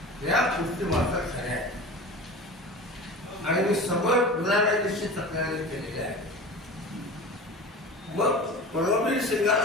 या गोष्टी मात्र खऱ्या आहेत आणि मी सबळ पुराव्याची तक्रारी केलेली आहे। मग परमवीर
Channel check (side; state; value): both; normal; correlation 0.34